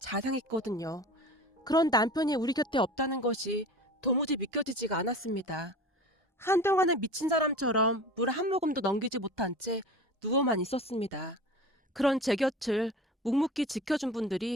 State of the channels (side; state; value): both; normal; correlation 0.36